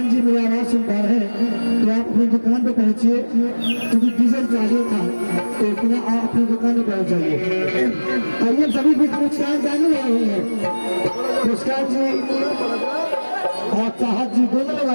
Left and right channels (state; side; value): inverted; both; correlation -1.00